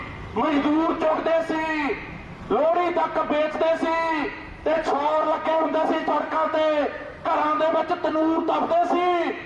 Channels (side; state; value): both; identical; correlation 1.00